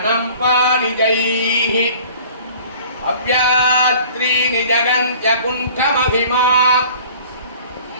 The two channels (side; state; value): both; inverted; correlation -0.48